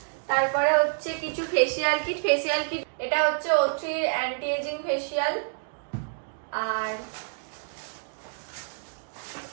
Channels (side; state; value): left; silent; digital silence